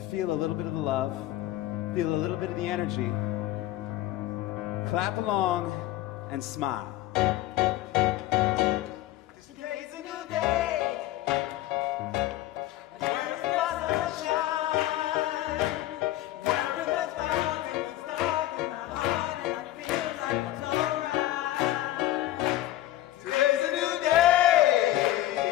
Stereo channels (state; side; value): quieter; right; 14.9 dB